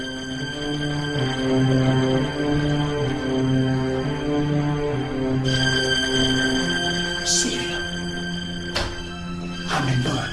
Sylvia, I'm a man.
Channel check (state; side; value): identical; both; correlation 1.00